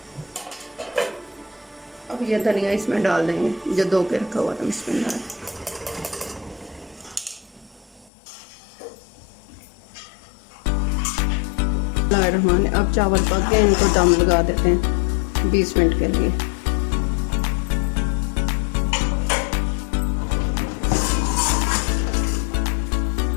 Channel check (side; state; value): right; drops out; at 8.1 s